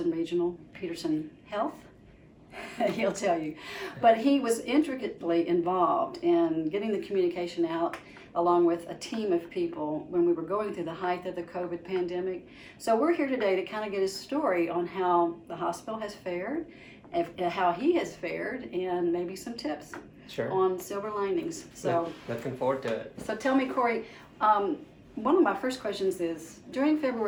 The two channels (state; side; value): identical; both; correlation 1.00